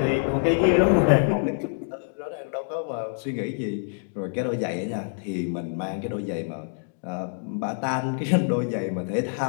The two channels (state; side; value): silent; right; digital silence